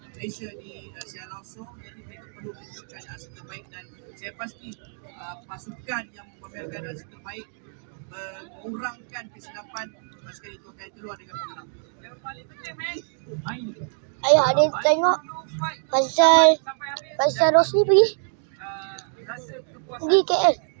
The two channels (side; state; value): left; silent; 61 dB below the other